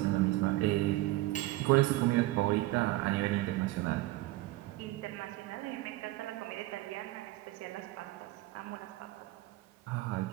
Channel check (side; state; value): left; quieter; 18.2 dB